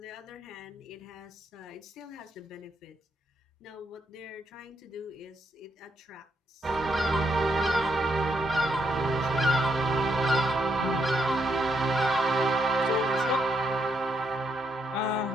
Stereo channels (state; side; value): normal; both; correlation 0.77